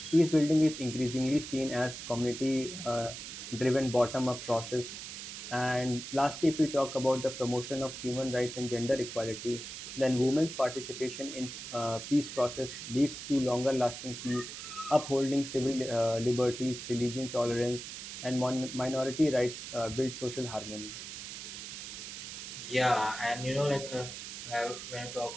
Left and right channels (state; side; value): noise; right; hiss, 9 dB below the sound